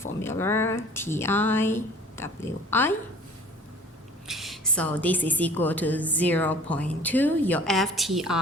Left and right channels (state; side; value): normal; both; correlation 0.48